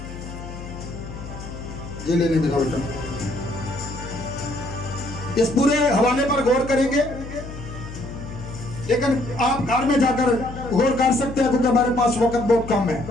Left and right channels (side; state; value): left; noise; hum, 11 dB below the sound